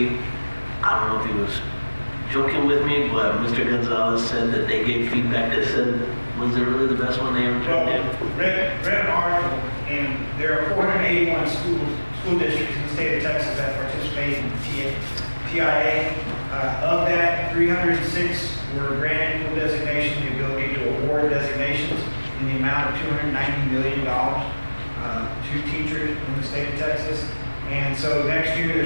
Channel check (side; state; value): both; inverted; correlation -1.00